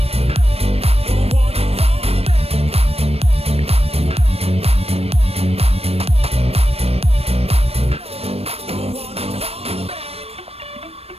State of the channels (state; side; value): late; left; 0.29 ms